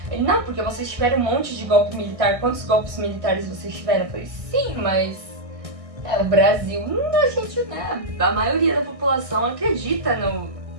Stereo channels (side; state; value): left; late; 1.6 ms